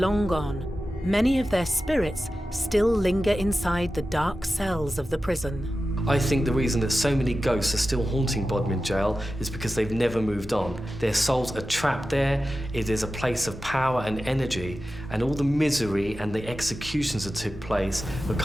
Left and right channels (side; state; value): both; normal; correlation 0.93